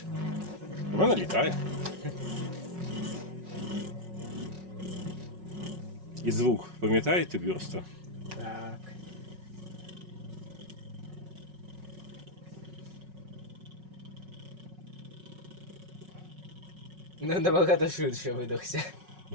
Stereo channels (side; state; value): left; late; 5.4 ms